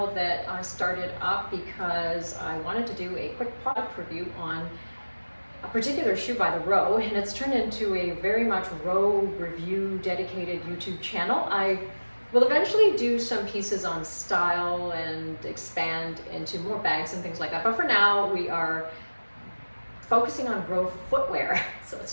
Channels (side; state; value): both; inverted; correlation -1.00